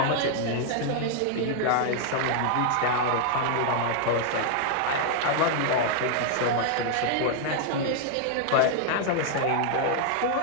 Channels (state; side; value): different; both; correlation 0.00